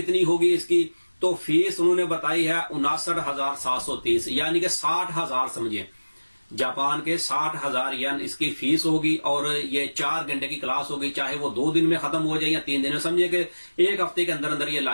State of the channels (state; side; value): inverted; both; correlation -1.00